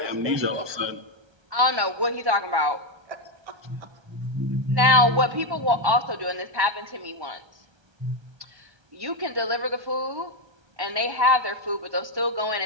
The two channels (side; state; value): left; late; 1.1 ms